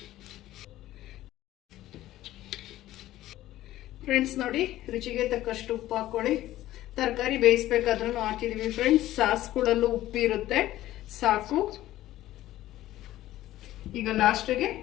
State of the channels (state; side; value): quieter; right; 14.8 dB